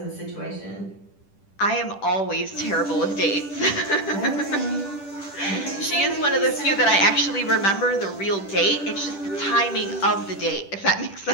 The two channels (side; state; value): right; late; 10 ms